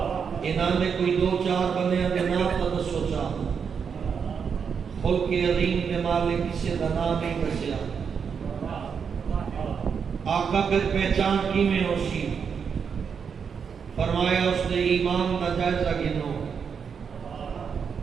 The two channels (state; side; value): quieter; left; 6.5 dB